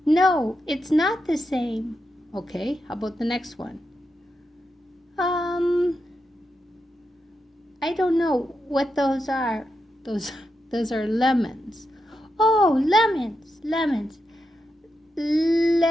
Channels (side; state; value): both; normal; correlation 0.86